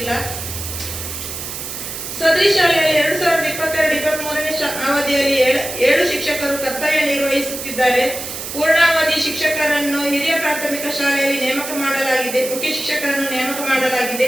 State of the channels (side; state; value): right; noise; hiss, 7 dB below the sound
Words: ಸದರಿ ಶಾಲೆಯಲ್ಲಿ 2022-23ನೇ ಅವಧಿಯಲ್ಲಿ 7 ಶಿಕ್ಷಕರು ಕರ್ತವ್ಯ ನಿರ್ವಹಿಸುತ್ತಿದ್ದಾರೆ. ಪೂರ್ಣಾವಧಿ ಶಿಕ್ಷಕರನ್ನು ಹಿರಿಯ ಪ್ರಾಥಮಿಕ ಶಾಲೆಯಲ್ಲಿ ನೇಮಕ ಮಾಡಲಾಗಿದೆ. ಮುಖ್ಯ ಶಿಕ್ಷಕರನ್ನು ನೇಮಕ ಮಾಡಲಾಗಿದೆ.